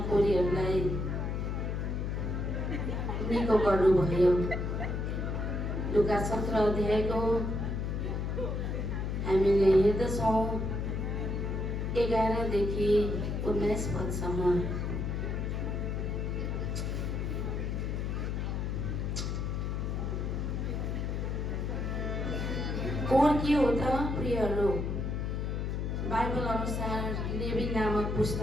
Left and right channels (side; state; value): left; noise; hum, 1 dB below the sound